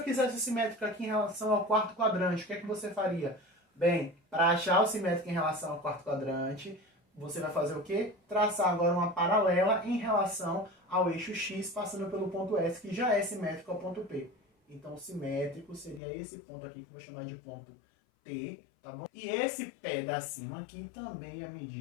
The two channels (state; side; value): drops out; right; at 16.0 s